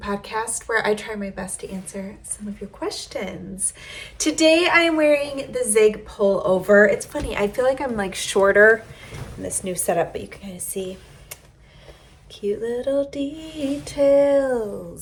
where I try my best to answer some of your questions. Today I am wearing the Zig pullover. It's funny, I feel like I'm like shorter in this new setup, but you can kind of see cute little details.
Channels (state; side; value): identical; both; correlation 1.00